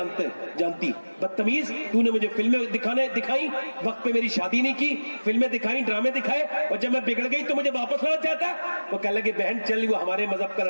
جانتی بدتمیز, تو نے مجھے فلمیں دکھائی, وقت پہ میری شادی نہیں کی, فلمیں دکھائی, ڈرامے دکھائے, اور جب میں بگڑ گئی تو مجھے واپس لانا چاہتا ہے. وہ کہنے لگے بہن چل, وہ ہمارے مذہب کا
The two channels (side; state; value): both; inverted; correlation -1.00